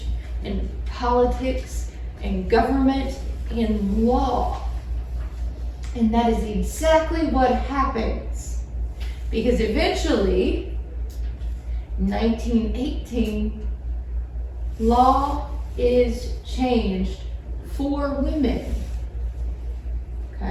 in politics and government and law. And that is exactly what happens. Because eventually, 1918, law is changed for women.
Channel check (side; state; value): both; identical; correlation 1.00